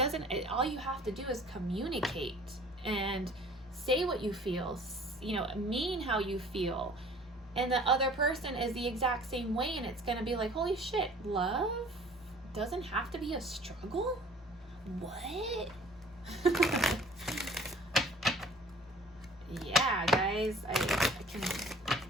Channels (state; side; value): normal; both; correlation 0.50